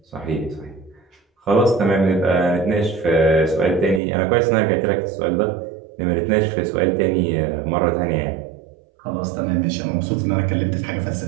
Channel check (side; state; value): left; drops out; at 4.0 s